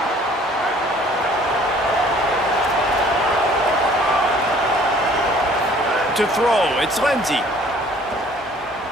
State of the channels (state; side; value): normal; both; correlation 0.55